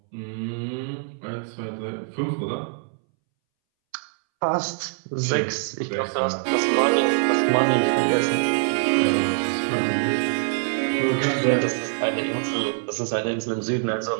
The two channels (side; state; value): left; silent; 62 dB below the other